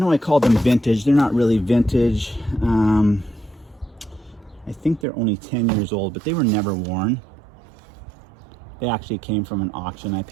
I called them vintage. They're not really vintage. I think they're only 10 years old, but they were never worn. They actually came from an auction. I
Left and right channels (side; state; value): left; drops out; at 5.1 s